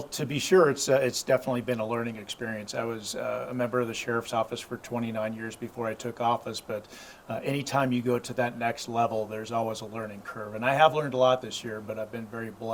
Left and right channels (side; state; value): both; identical; correlation 1.00